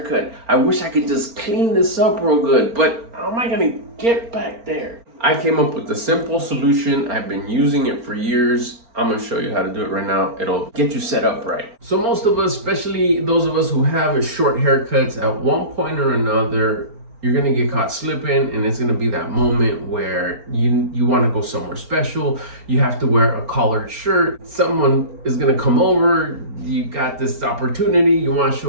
I wish I could just clean this up real good, but how am I gonna get back there? I came up with a simple solution. I've been using it for years. I'm gonna show you how to do it right now. It'll get you set up right. So most of us, especially those of us who have short haircuts, at one point or another, you're gonna get caught slipping, and it's gonna be that moment where you wanna go somewhere special. You have to wear a collared shirt. Someone is gonna come over. You got this opportunity, you wanna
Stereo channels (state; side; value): late; left; 4.4 ms